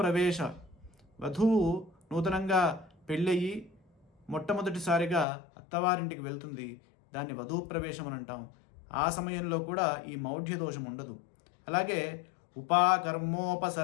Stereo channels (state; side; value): drops out; right; at 5.2 s